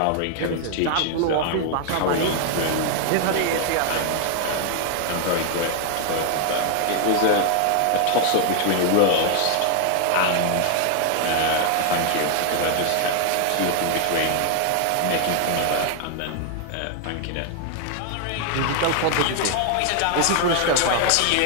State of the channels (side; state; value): both; different; correlation 0.00